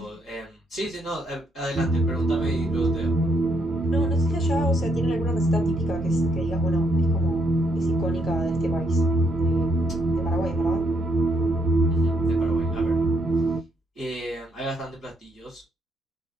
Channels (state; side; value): normal; both; correlation 0.73